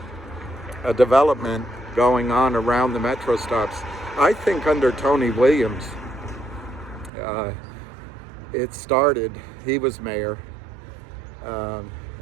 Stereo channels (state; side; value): drops out; left; at 7.1 s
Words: development going on around the metro stops. I think under Tony Williams, it started. He was mayor,